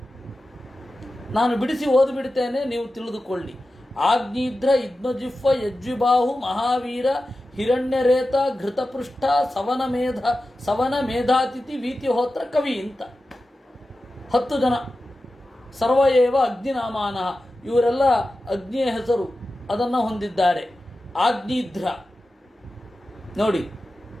ನಾನು ಬಿಡಿಸಿ ಓದಿಬಿಡ್ತೇನೆ, ನೀವು ತಿಳಿದುಕೊಳ್ಳಿ. ಆಗ್ನಿದ್ರ ಇದ್ಮಜಿಹ್ವ ಯಜ್ವಿಬಾಹು ಮಹಾವೀರ ಹಿರಣ್ಯರೇತ ಘೃತಪೃಷ್ಠ ಸವನ ಮೇಧಾತಿಥಿ ವೀತಿಹೋತ್ರ ಕವಿ ಅಂತ 10 ಜನ. ಸರ್ವಯೇವ ಅಗ್ನಿನಾಮಾನ, ಇವರೆಲ್ಲ ಅಗ್ನಿಯ ಹೆಸರು ಅದನ್ನು ಹೊಂದಿದ್ದಾರೆ. ಆಗ್ನಿಧ್ರ ನೋಡಿ.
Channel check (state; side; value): normal; both; correlation 0.93